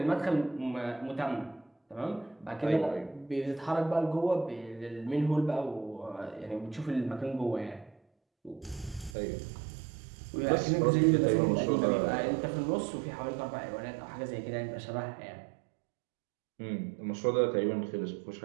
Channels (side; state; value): left; drops out; at 9.2 s